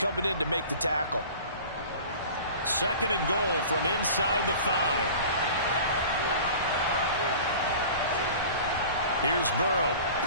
in to make the tackle. 2nd and goal from inside the 5. Here's Burrow.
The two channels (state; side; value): inverted; both; correlation -0.41